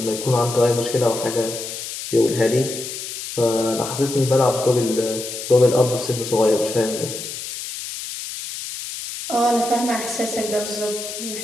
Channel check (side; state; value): left; noise; hiss, 8 dB below the sound